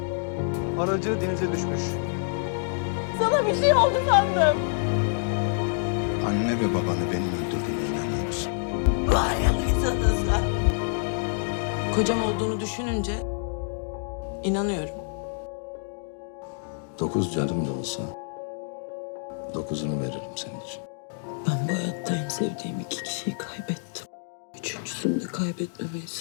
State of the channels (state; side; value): silent; right; digital silence